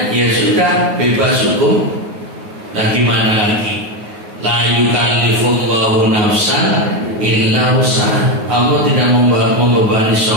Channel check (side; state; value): left; late; 9.5 ms